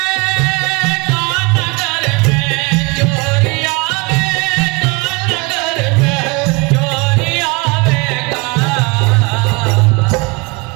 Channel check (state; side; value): quieter; left; 27.3 dB